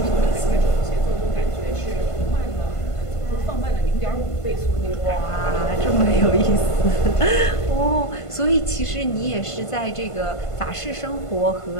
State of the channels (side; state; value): right; late; 1.5 ms